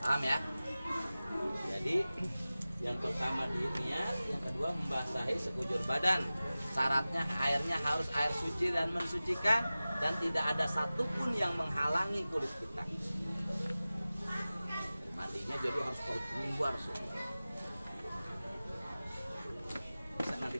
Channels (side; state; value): both; inverted; correlation -0.97